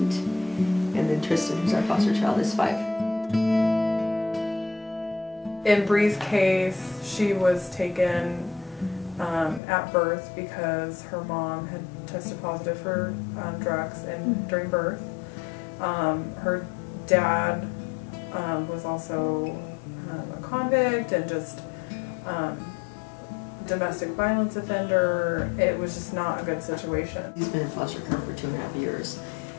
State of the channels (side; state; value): right; drops out; at 9.6 s